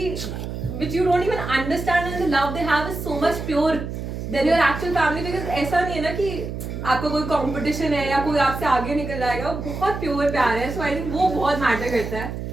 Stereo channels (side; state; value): right; noise; hum, 6 dB below the sound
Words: which you don't even understand, and the love they have is so much pure than your actual family, because ऐसा नहीं है ना कि आपका कोई कंपटीशन है या कोई आपसे आगे निकल जाएगा, बहुत प्योर प्यार है. सो आई थिंक वो बहुत मैटर करता है.